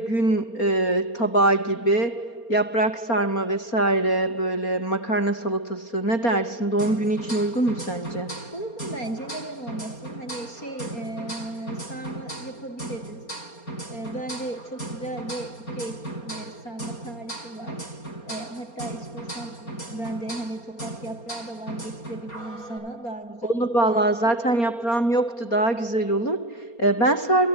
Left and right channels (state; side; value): late; right; 4.3 ms